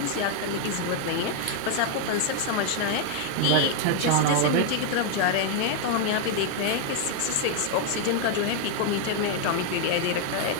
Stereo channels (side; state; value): both; different; correlation 0.00